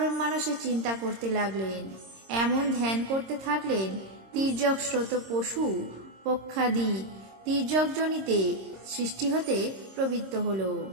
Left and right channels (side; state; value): left; late; 26 ms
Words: মানুষে চিন্তা করতে লাগলেন। এমন ধ্যান করতে থাকলেন তির্যক স্রোত পশু পক্ষাদি তির্যকজনিতে সৃষ্টি হতে প্রবৃত্ত হল।